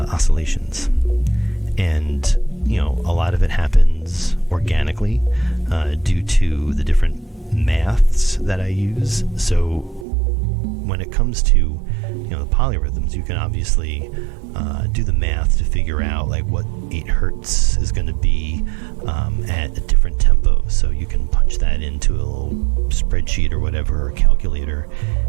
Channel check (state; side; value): drops out; left; at 10.1 s